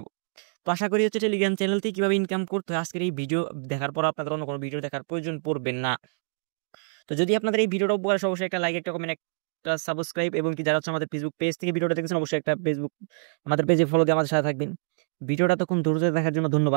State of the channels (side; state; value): left; silent; digital silence